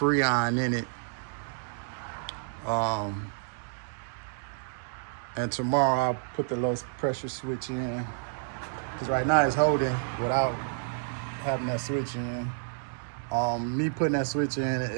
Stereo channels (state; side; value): silent; left; digital silence